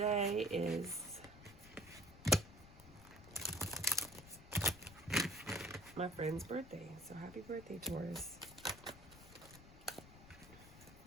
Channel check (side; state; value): left; noise; rumble, 18 dB below the sound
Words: is my friend's birthday. So happy birthday, Taurus.